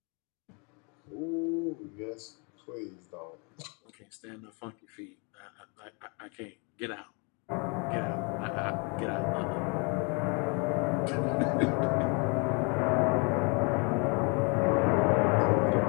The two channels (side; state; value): right; quieter; 33.5 dB